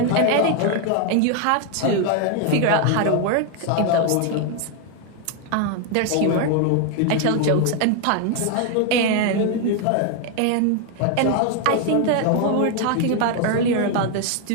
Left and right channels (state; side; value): different; both; correlation 0.01